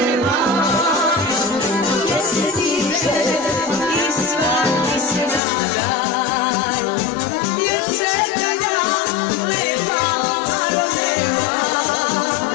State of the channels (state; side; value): drops out; right; at 5.4 s